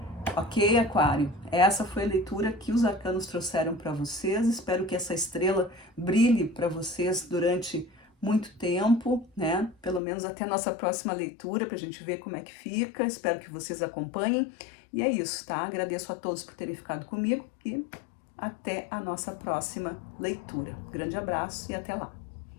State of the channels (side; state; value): right; drops out; at 10.0 s